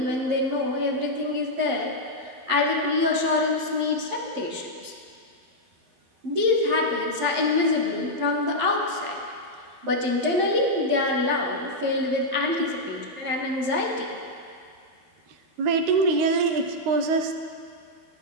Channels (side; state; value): left; late; 11 ms